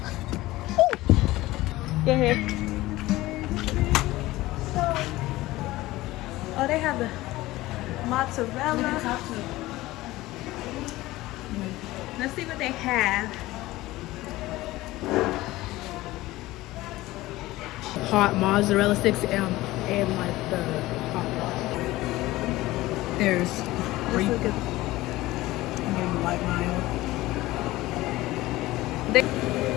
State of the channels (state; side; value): quieter; right; 18.0 dB